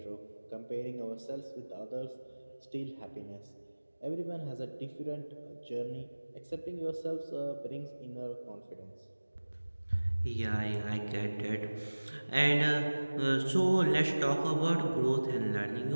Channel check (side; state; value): both; inverted; correlation -1.00